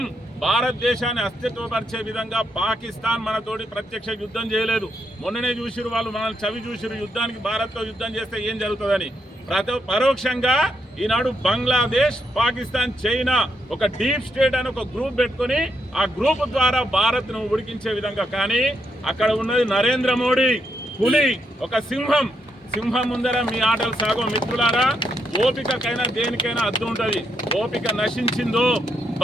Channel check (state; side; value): normal; both; correlation 0.79